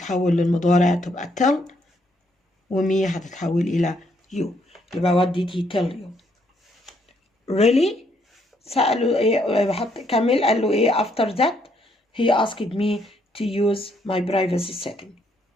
للمضارع تبقى tell. ومي هتتحول إلى you. يبقى what did he tell you؟ really؟ سأله إيه؟ بحط كمل قال له إيه after that he asked me to use my privacy setting.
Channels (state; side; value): normal; both; correlation 0.72